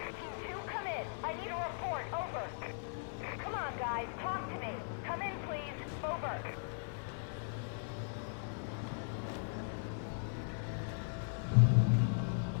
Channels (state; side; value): silent; right; digital silence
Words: 2, come in. I need a report. Over. Come on, guys. Talk to me. Come in, please. Over.